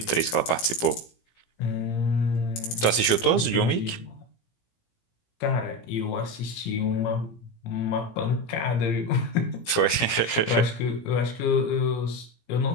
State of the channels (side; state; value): right; late; 17 ms